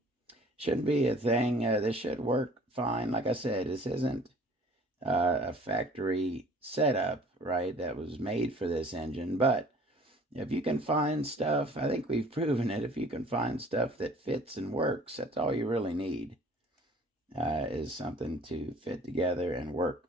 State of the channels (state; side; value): normal; both; correlation 0.51